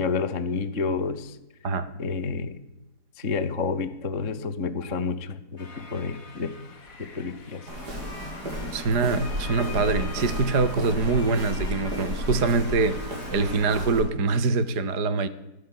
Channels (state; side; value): late; left; 4.8 ms